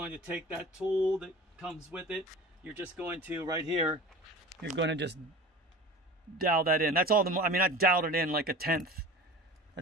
to take that tool that comes with it. You're just going to, right here, you're going to just dowel that in. That's all I mean, I doweled it in like a 1/10.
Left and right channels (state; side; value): normal; both; correlation 0.37